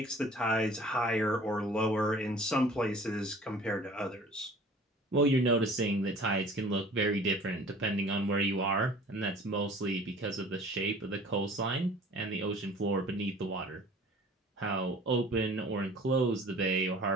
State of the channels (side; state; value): both; normal; correlation 0.47